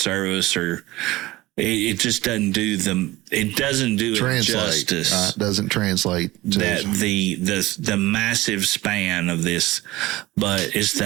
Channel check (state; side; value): quieter; left; 18.8 dB